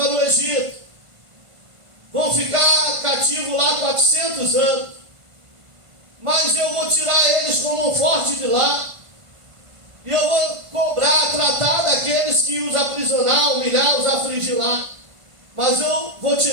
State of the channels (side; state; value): left; late; 1.5 ms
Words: o Egito. Vão ficar cativos lá 400 anos. Mas eu vou tirar eles como um forte de lá. E eu vou cobrar, tratar daqueles que os aprisionar, humilhar, os afligir lá. Mas eu vou